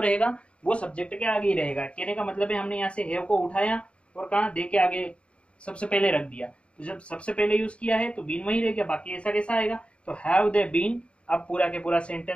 वो सब्जेक्ट के आगे ही रहेगा। कहने का मतलब है हमने यहाँ से हैव को उठाया और कहाँ दे के आगे सबसे पहले रख दिया। तो जब सबसे पहले यूज किया है तो बीन वही रह गया, बाकी ऐसा कैसा आएगा। तो हैव दे बीन, अब पूरा के पूरा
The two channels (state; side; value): late; right; 0.060 ms